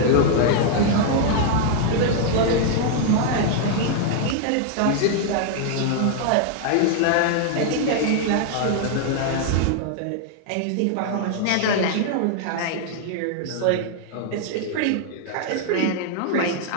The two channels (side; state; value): both; different; correlation 0.00